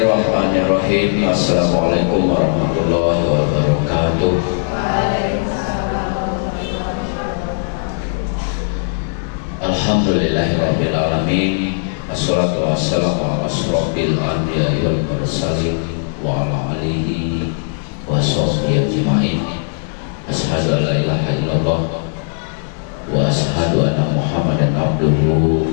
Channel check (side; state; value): right; silent; digital silence